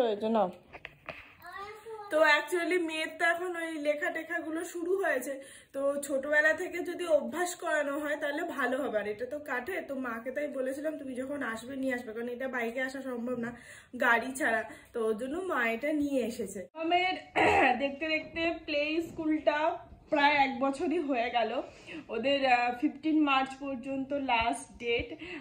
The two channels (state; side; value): identical; both; correlation 1.00